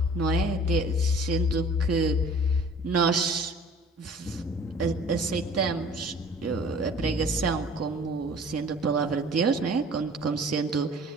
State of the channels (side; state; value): both; normal; correlation 0.48